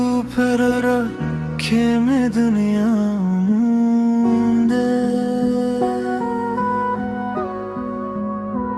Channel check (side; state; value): both; identical; correlation 1.00